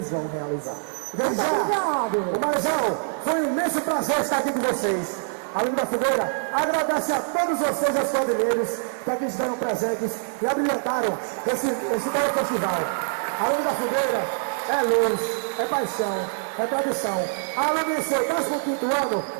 vão realizar. Obrigado! Umarizal, foi um imenso prazer estar aqui com vocês. A Lume da Fogueira agradece a todos vocês, os quadrilheiros, que aqui estiveram presentes e abrilhantaram esse belo festival. A Lume da Fogueira é luz, é paixão, é tradição. A Lume do 15º ano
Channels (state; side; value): silent; left; 62 dB below the other